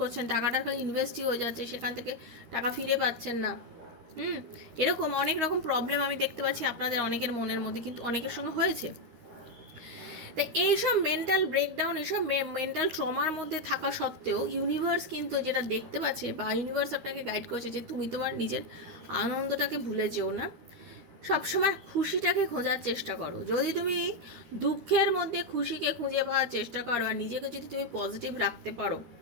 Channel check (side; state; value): left; late; 13 ms